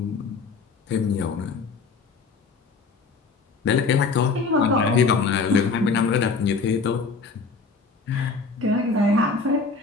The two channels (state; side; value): quieter; right; 4.5 dB